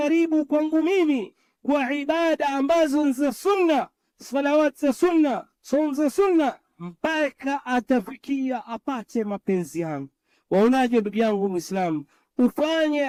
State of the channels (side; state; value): both; identical; correlation 1.00